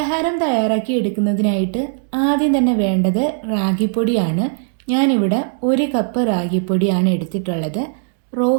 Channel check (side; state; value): left; silent; digital silence